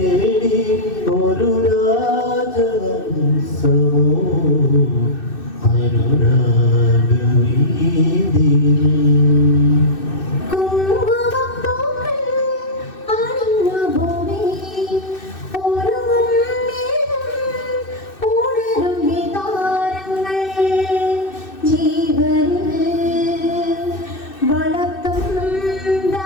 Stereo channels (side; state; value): right; late; 2.6 ms